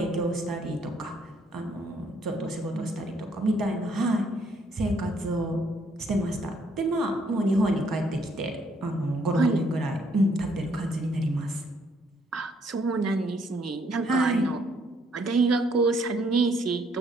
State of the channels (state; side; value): normal; both; correlation 0.68